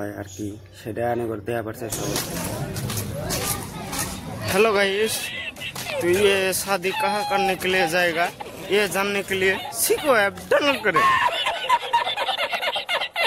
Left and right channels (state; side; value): identical; both; correlation 1.00